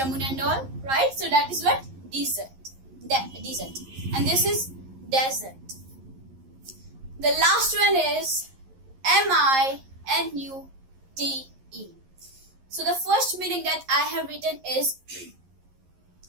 and all, right? So that is what dessert. Dessert. And this is desert. The last one is MINUTE. So the first meaning that I have written is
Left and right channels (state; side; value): late; left; 11 ms